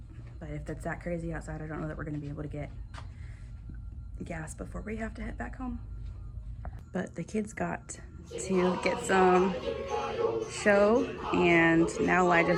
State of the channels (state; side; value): identical; both; correlation 1.00